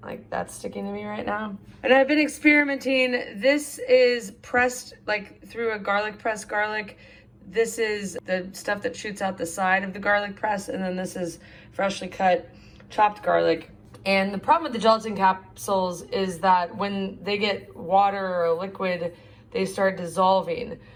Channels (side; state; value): both; identical; correlation 1.00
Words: Like that's sticking to me right now. And I've been experimenting. This is pressed like through a garlic press garlic. This is the stuff that shoots out the side of the garlic press, and then this is freshly cut chopped garlic. And the problem with the gelatin capsules is that when they get water or liquid, they start dissolving.